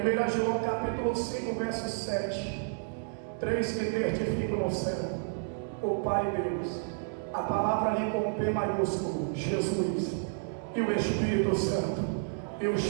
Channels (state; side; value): silent; left; digital silence